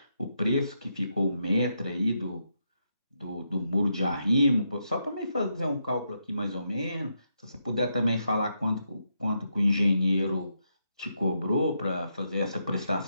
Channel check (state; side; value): inverted; both; correlation -0.81